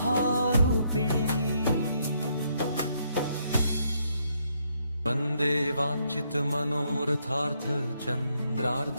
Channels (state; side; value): inverted; both; correlation -0.74